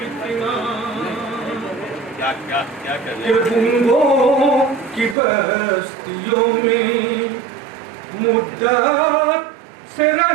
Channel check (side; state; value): left; drops out; at 5.2 s